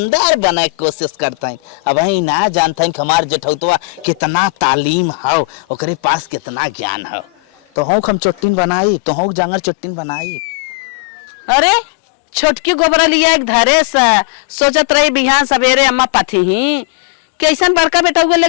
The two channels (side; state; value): right; drops out; at 8.7 s